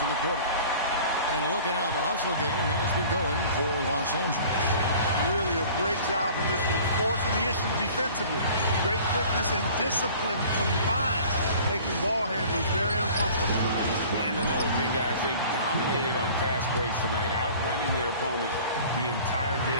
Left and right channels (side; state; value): both; inverted; correlation -0.46